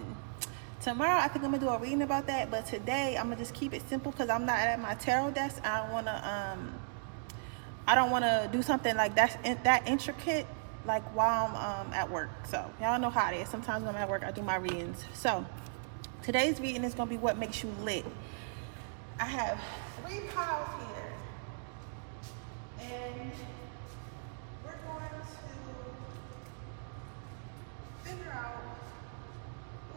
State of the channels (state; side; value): silent; left; digital silence